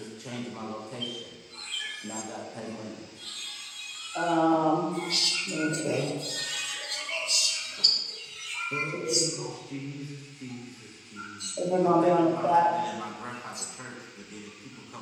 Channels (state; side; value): identical; both; correlation 1.00